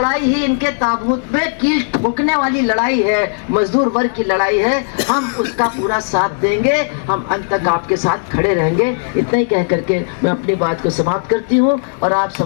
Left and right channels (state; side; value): silent; right; 64 dB below the other